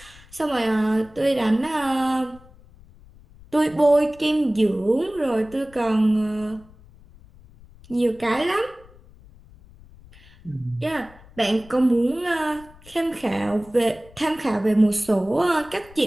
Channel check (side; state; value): left; noise; rumble, 24 dB below the sound